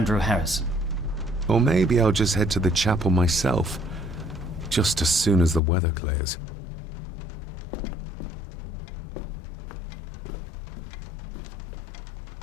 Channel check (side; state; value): right; drops out; at 5.6 s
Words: Harrison. Or maybe I'll just head to the chapel myself, just as soon as the weather clears.